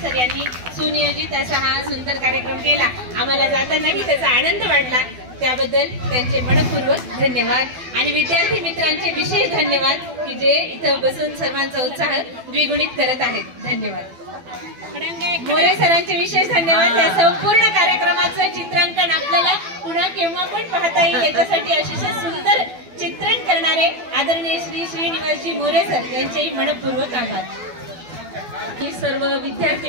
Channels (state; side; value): late; left; 12 ms